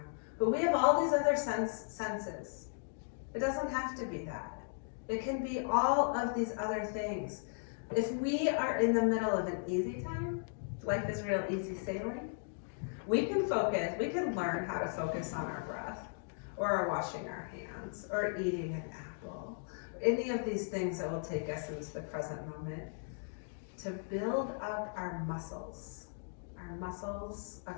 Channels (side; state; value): right; silent; digital silence